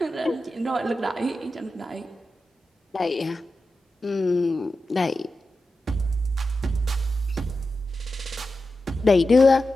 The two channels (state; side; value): normal; both; correlation 0.91